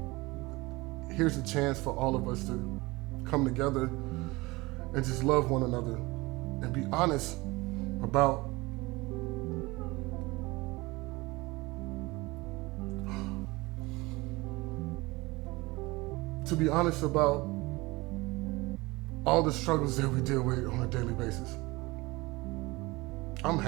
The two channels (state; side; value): quieter; left; 22.4 dB